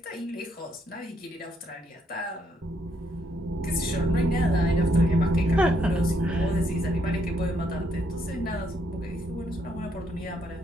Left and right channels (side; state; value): both; normal; correlation 0.73